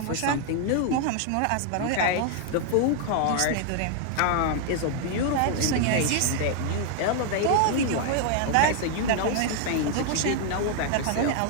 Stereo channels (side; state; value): both; different; correlation 0.00